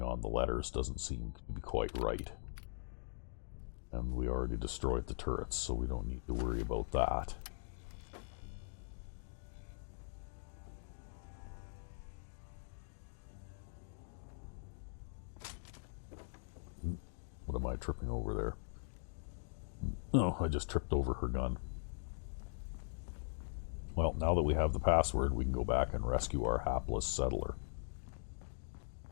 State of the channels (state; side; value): silent; right; digital silence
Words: the letters doesn't seem to be quite right. And we already destroyed the turrets, so we don't need to worry about that. What am I tripping over there? Oh, I just tripped over her gun. Well, now that we have the password, we can go back and rescue our hapless settler.